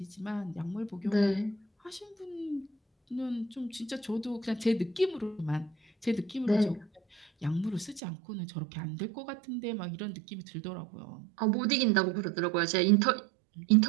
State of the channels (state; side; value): drops out; left; at 8.0 s